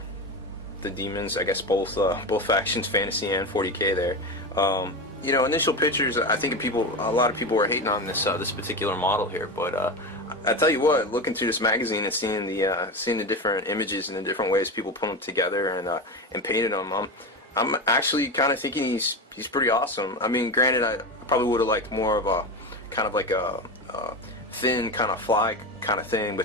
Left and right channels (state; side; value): normal; both; correlation 0.21